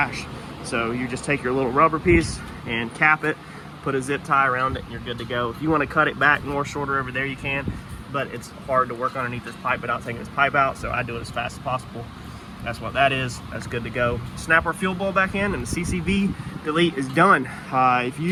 So you just take your little rubber piece and cap it, put a zip tie around it, and you're good to go. If you want to cut it back more shorter over there, you can, but it's hard to work underneath this pipe without taking this pipe out, so I do it as fast as possible. That's what that is. That's good to go. Snap our fuel bowl back in, and the CCV delete is done. If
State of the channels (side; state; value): both; identical; correlation 1.00